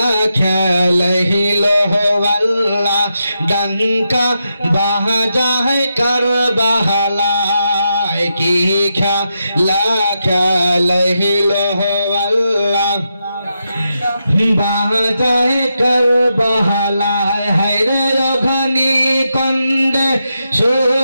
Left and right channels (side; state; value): both; inverted; correlation -0.85